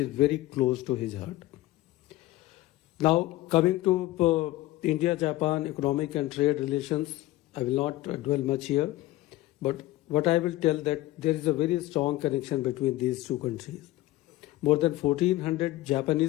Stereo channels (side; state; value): right; quieter; 17.1 dB